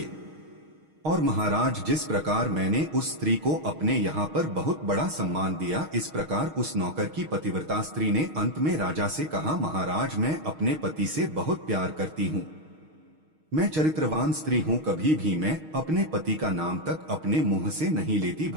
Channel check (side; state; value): left; late; 6.4 ms